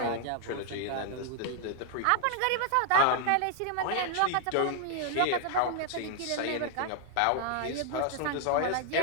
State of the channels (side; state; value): both; different; correlation 0.00